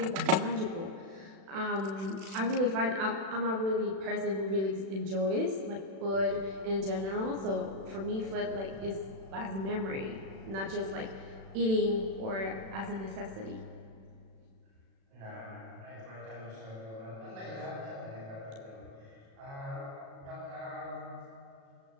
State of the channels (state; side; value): late; left; 36 ms